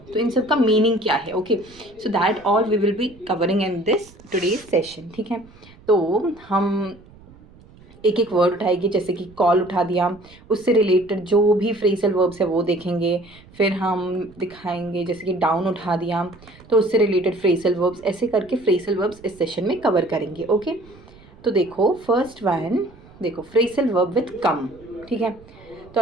तो इन सब का मीनिंग क्या है? Okay, so that all we will be covering in this today's session. ठीक है, तो हम एक एक वर्ड उठाएगी, जैसे कि कॉल उठा दिया, उससे रिलेटेड जो भी फ्रेसल वर्ब्स है वो देखेंगे। फिर हम दिखाएंगे जैसे कि डाउन उठा दिया तो उससे रिलेटेड फ्रेसल वर्ब्स, ऐसे करके फ्रेसल वर्ब्स इस सेशन में कवर करेंगे। ओके, तो देखो फर्स्ट वन, देखो फ्रेसल वर्ब विथ कम। ठीक है, तो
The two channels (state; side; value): noise; right; rumble, 24 dB below the sound